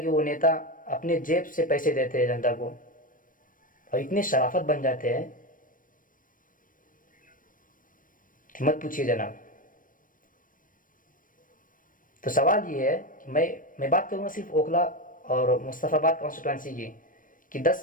कि वो नेता अपने जेब से पैसे देते हैं जनता को। और इतने शराफत बन जाते हैं कि मत पूछिए जनाब। तो सवाल ये है कि मैं बात करूँगा सिर्फ ओखला और मुस्तफ़ाबाद कॉन्स्टिट्यूंसी की कि 10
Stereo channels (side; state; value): right; late; 0.39 ms